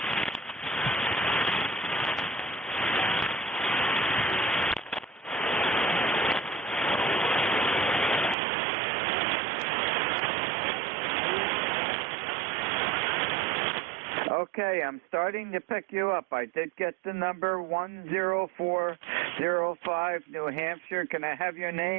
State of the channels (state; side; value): drops out; left; at 8.3 s